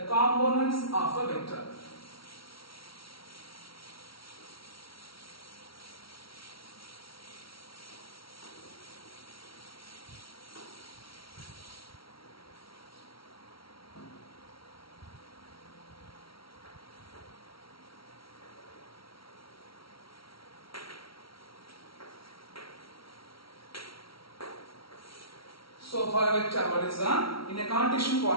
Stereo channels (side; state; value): right; late; 0.75 ms